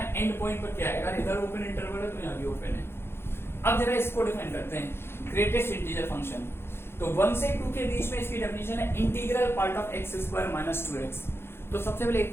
एंड पॉइंट पर क्या है, अगर इधर ओपन इंटरवल है तो यहाँ भी ओपन है। अब जरा इसको डिफाइन करते हैं, ग्रेटेस्ट इंटीजर फंक्शन। तो 1 से 2 के बीच में इसकी डेफिनेशन है integral part of x square minus 2x। तो सबसे पहले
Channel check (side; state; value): right; late; 0.11 ms